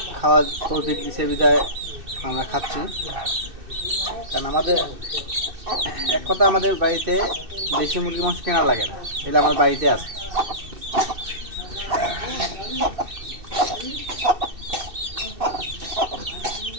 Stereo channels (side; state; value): left; late; 2.6 ms